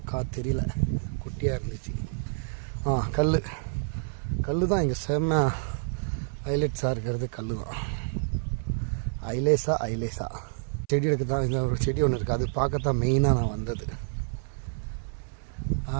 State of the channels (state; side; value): silent; left; 59 dB below the other